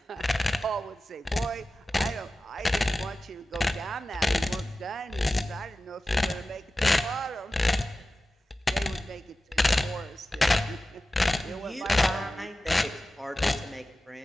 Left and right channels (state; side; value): normal; both; correlation 0.95